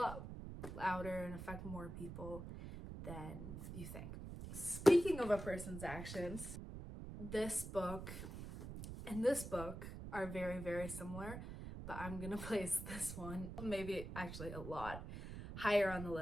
louder and affect more people than you think. Speaking of a person's actions, this book and this book are very, very similar, but I'm gonna place this one, maybe actually a lot higher on the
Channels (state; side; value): noise; right; rumble, 8 dB below the sound